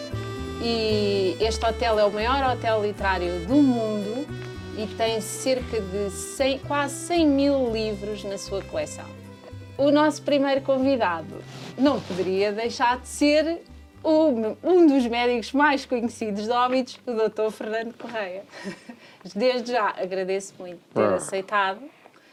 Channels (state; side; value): identical; both; correlation 1.00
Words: e este hotel é o maior hotel literário do mundo e tem cerca de quase 100 mil livros na sua coleção. O nosso primeiro convidado não poderia deixar de ser um dos médicos mais conhecidos de Óbidos, o Dr. Fernando Correia. Desde já agradeço muito ter aceitado